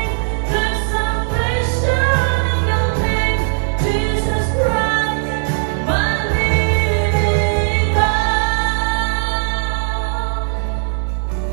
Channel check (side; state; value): left; silent; 61 dB below the other